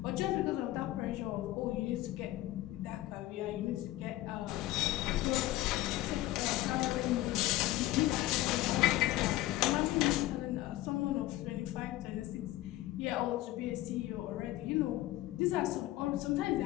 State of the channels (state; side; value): quieter; right; 16.2 dB